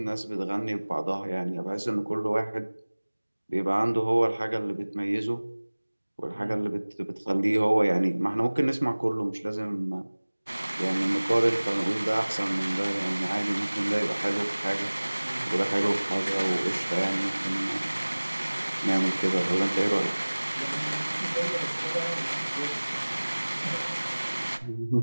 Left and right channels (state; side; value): inverted; both; correlation -1.00